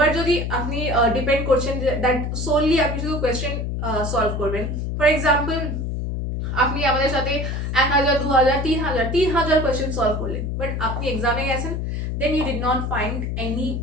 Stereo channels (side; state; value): left; noise; hum, 2 dB below the sound